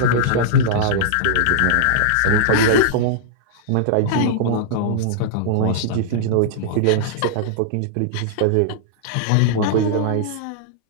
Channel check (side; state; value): both; different; correlation -0.02